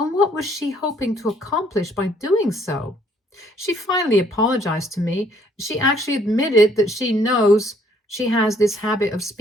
what was she hoping to accomplish by doing so? She finally apologized to me. She actually admitted that she knows she has this habit of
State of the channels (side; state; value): both; normal; correlation 0.64